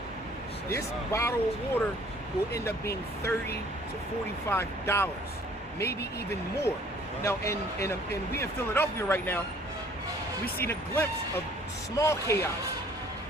this bottle of water will end up being $30 to $45, maybe even more. Wow. Now, and we in Philadelphia right now, we seen a glimpse of small chaos.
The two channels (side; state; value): both; normal; correlation 0.56